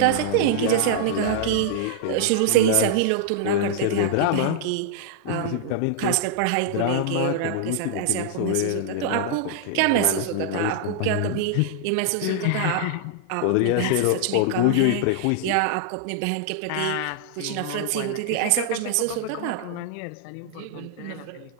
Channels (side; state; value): both; different; correlation -0.01